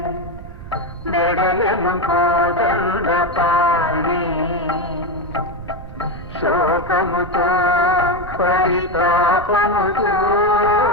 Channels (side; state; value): right; noise; rumble, 13 dB below the sound